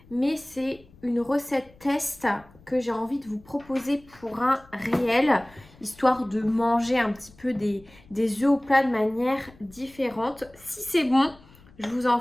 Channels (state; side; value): noise; left; rumble, 25 dB below the sound